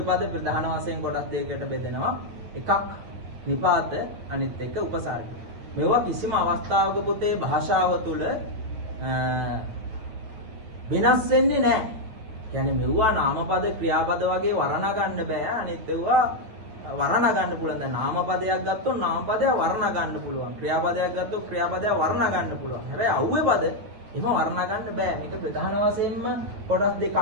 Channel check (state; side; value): late; left; 9.3 ms